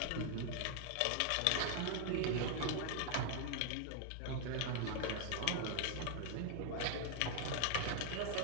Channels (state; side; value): different; both; correlation 0.00